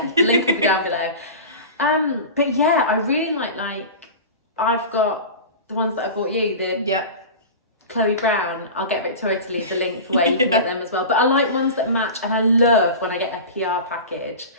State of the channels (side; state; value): both; inverted; correlation -0.31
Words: the link will be down below. But yeah, I really like I've got the ones that I bought you, the Chloe Brown. I'll get Victoria to leave the link for where you can get them as well. But I like ones that match, and I love when I get a PR package